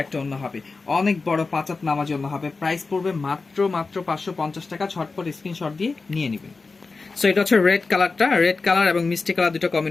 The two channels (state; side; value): quieter; right; 4.1 dB